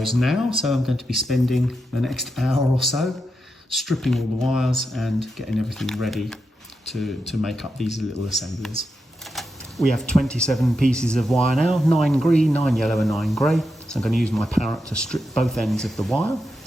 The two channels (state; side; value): normal; both; correlation 0.86